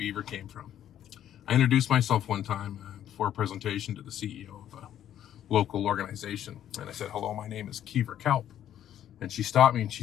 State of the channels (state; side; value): quieter; right; 10.9 dB